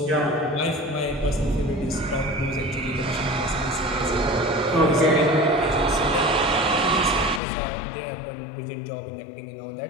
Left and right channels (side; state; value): right; drops out; at 7.4 s